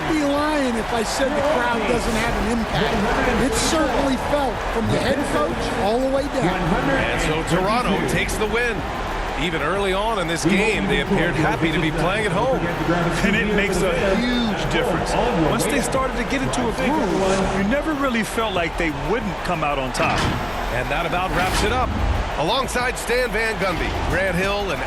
be lying if I said the crowd doesn't have an impact. It certainly felt from the head coach all the way down. And so Toronto takes the win. Even early on in this game, they appeared happy to be playing at home. And it makes a huge difference. Once they started to get into a groove, you never really felt like they wouldn't come out on top. And that about wraps it up. Alongside Stan Van Gundy, Grant Hill, and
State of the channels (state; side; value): identical; both; correlation 1.00